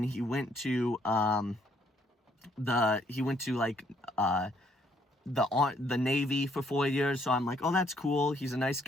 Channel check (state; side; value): normal; both; correlation 0.68